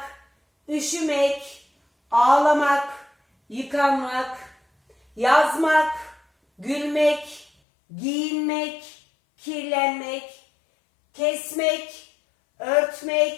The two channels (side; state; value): right; drops out; at 7.5 s